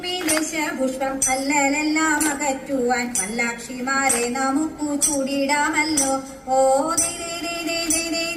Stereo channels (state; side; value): identical; both; correlation 1.00